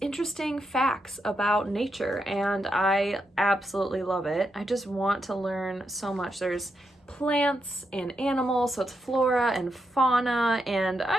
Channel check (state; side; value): normal; both; correlation 0.83